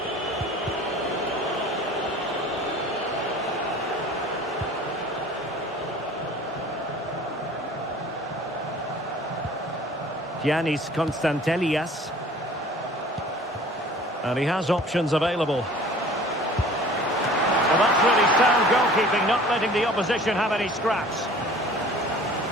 Giannis Constantelias. And he has options available. Well, that's really sound goalkeeping, not letting the opposition have any scraps.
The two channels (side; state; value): both; normal; correlation 0.47